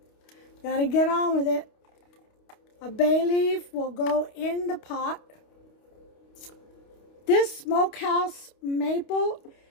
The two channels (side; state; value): right; late; 29 ms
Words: got to get on with it. A bay leaf will go in the pot. This smokehouse maple